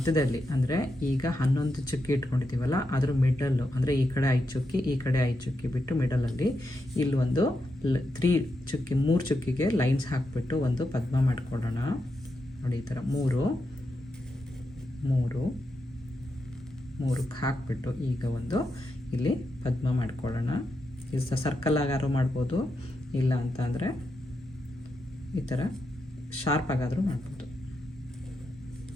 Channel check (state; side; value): normal; both; correlation 0.85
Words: ಅಂದರೆ ಈಗ 11 ಚುಕ್ಕಿ ಇಟ್ಕೊಂಡಿದ್ದೀವಲ್ಲ, ಅದ್ರ ಮಿಡಲ್ಲು ಅಂದರೆ ಈ ಕಡೆ 5 ಚುಕ್ಕಿ ಈ ಕಡೆ 5 ಚುಕ್ಕಿ ಬಿಟ್ಟು ಮಿಡಲಲ್ಲಿ ಇಲ್ಲೊಂದು 3 ಚುಕ್ಕಿಗೆ ಲೈನ್ಸ್ ಹಾಕಿಬಿಟ್ಟು ಒಂದು ಪದ್ಮ ಮಾಡ್ಕೊಳ್ಳೋಣ. ನೋಡಿ ಈ ಥರ 3 ಹಾಕಿಬಿಟ್ಟು ಈಗ ಒಂದು ಇಲ್ಲಿ ಪದ್ಮ ಮಾಡ್ಕೊಳ್ಳೋಣ. ಇದು ಸರ್ಕಲ್ ಆಗಾದ್ರೂ ಮಾಡ್ಬೋದು, ಇಲ್ಲ ಅಂತ ಅಂದರೆ ಈ ಥರ ಶಾರ್ಪ್ ಆಗಾದರೂ ಮಾಡ್ಬೋದು.